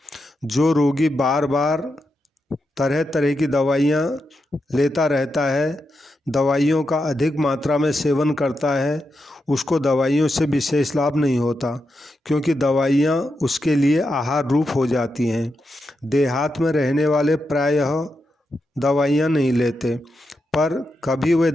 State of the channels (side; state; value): both; normal; correlation 0.86